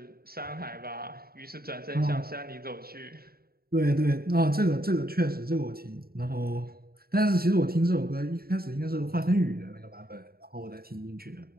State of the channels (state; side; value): late; left; 0.44 ms